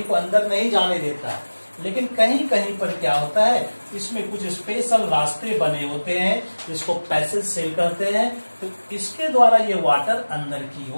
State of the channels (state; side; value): inverted; both; correlation -1.00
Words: को अंदर नहीं जाने देता है, लेकिन कहीं कहीं पर क्या होता है, इसमें कुछ स्पेशल रास्ते बने होते हैं जिसको पैसेज सेल कहते हैं। तो इसके द्वारा ये वाटर अंदर की